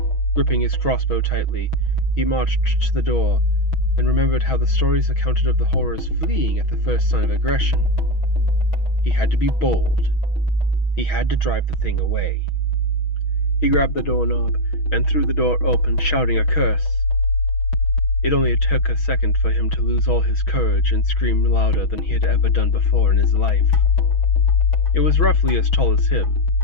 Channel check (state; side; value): late; right; 6.2 ms